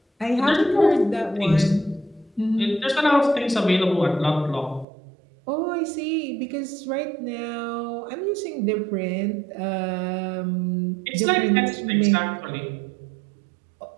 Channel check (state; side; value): drops out; left; at 4.9 s